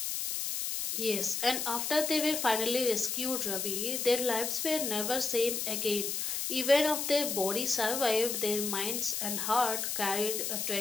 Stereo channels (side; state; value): left; noise; hiss, 2 dB below the sound